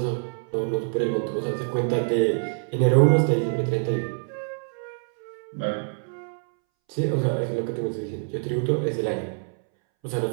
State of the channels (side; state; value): left; silent; 61 dB below the other